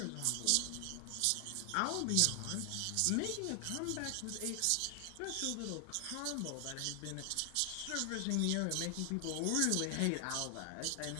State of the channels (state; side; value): different; both; correlation 0.00